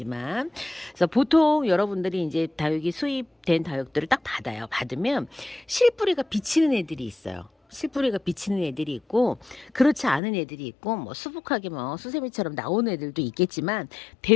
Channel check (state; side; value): drops out; right; at 10.2 s